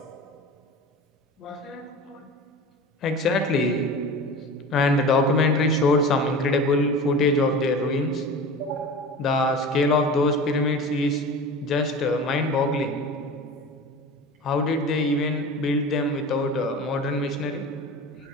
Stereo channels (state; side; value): normal; both; correlation 0.34